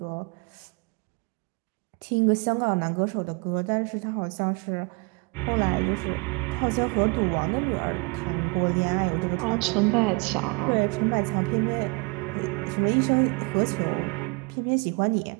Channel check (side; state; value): left; quieter; 30.5 dB